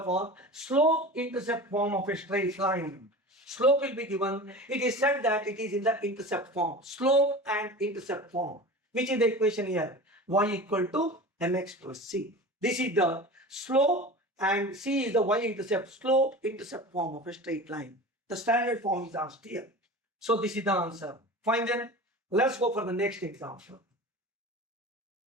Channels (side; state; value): both; normal; correlation 0.34